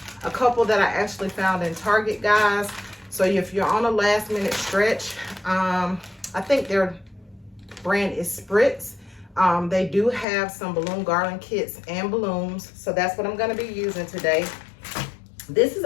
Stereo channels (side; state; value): right; drops out; at 10.2 s